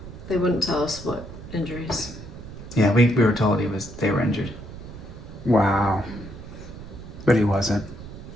They wouldn't tell us what injuries. Yeah, we were told they were injured. Wow. But he wasn't.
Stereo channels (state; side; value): noise; right; rumble, 13 dB below the sound